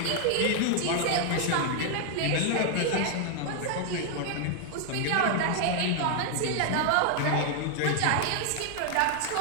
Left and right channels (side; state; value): both; different; correlation 0.00